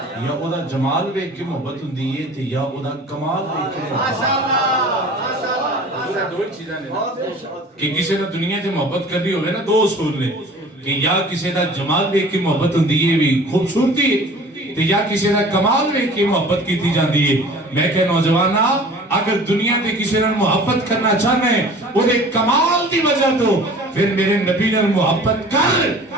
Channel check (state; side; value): normal; both; correlation 0.45